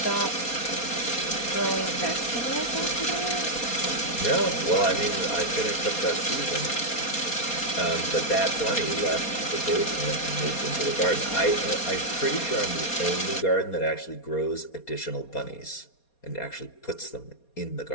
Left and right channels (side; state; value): right; late; 4.2 ms